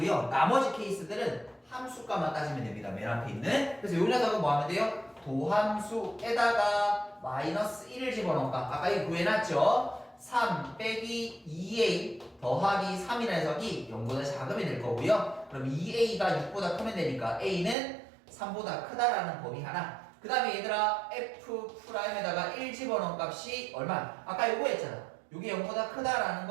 나머지 케이스들은 함수값만 따지면 됩니다. 맨 앞에 있는. 그래서 이 녀석은 뭐 하면 돼요? 도함수에다가 마이너스 1을 집어넣을까? 아까 이거 구해놨죠? 3 빼기 2a 더하기 3이라는 녀석이 0보다 작으면 될 거고요. 그럼 2a가 6보다 크면 되니까 a는 3보다 크다라는 범위 하나. 그 다음에 얘들아 f'에다가 1 집어넣은 값이 얼마? 아까 요거 했잖아. 요게 0보다 크다라는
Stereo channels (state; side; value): drops out; left; at 17.8 s